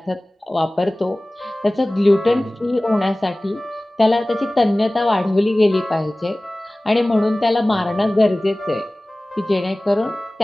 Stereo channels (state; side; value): normal; both; correlation 0.98